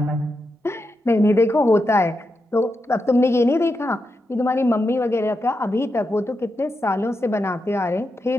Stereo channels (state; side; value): normal; both; correlation 0.87